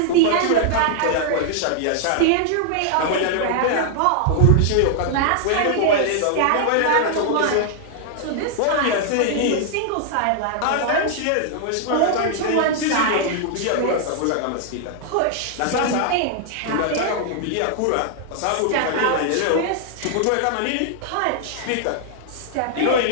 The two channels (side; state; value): both; different; correlation 0.00